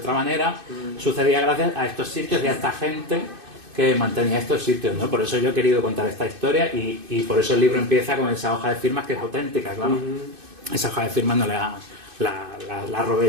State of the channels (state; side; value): late; left; 2.6 ms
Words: manera, sucedía gracias a estos sitios y a esta gente que mantenía estos sitios, ¿no? Por eso yo he querido contar esta historia y por eso el libro empieza con esa hoja de firmas que es auténtica, claro. Esa hoja de firmas no la